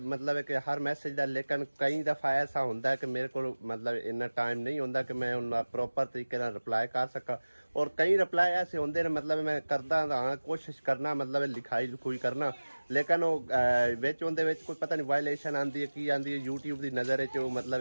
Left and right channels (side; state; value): both; inverted; correlation -1.00